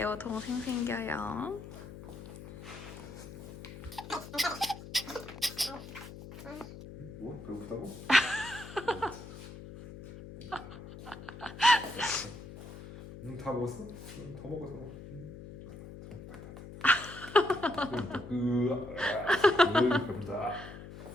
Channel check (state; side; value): noise; left; hum, 13 dB below the sound